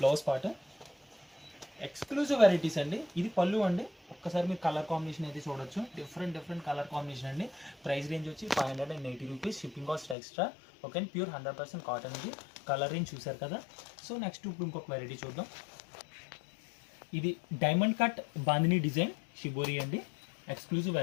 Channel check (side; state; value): right; drops out; at 10.2 s